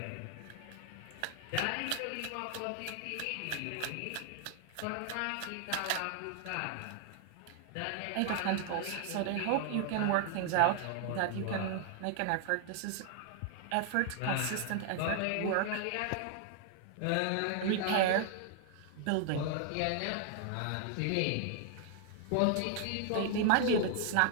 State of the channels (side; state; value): both; different; correlation 0.00